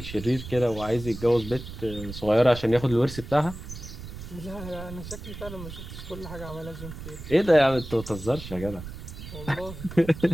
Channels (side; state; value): right; noise; rumble, 11 dB below the sound